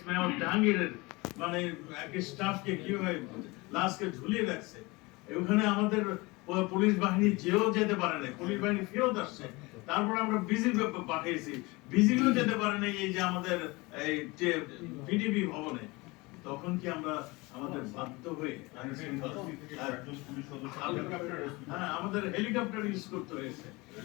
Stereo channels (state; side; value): quieter; right; 24.0 dB